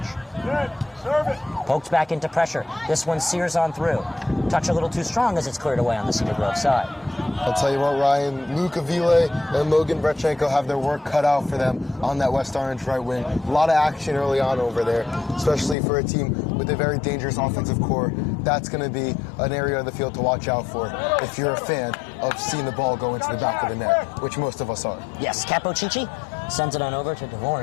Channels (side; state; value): right; drops out; at 15.8 s